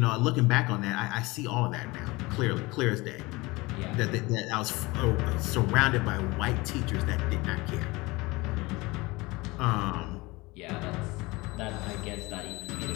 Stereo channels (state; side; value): quieter; right; 22.8 dB